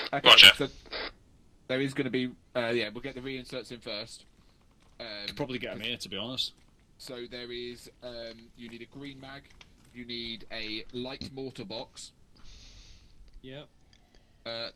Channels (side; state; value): both; identical; correlation 1.00